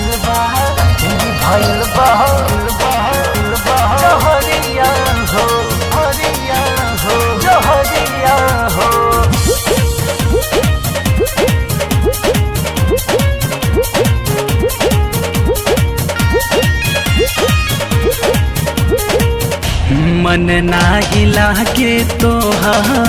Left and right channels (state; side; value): identical; both; correlation 1.00